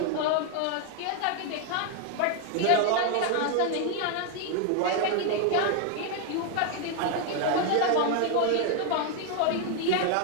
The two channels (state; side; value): different; both; correlation 0.01